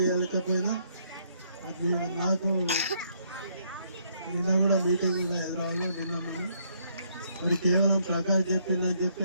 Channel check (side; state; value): both; inverted; correlation -0.71